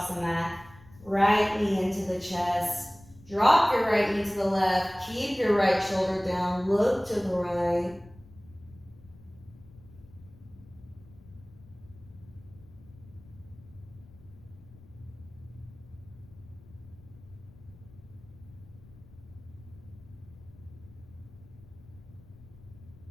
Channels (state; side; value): noise; left; rumble, 22 dB below the sound